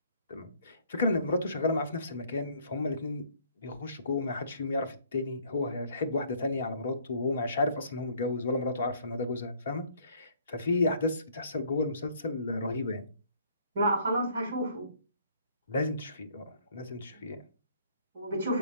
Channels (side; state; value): both; inverted; correlation -0.60